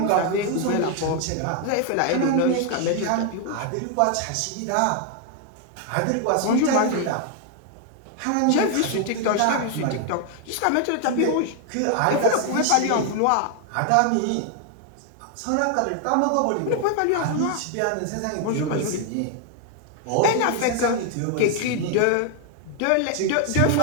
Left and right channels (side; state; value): both; different; correlation 0.00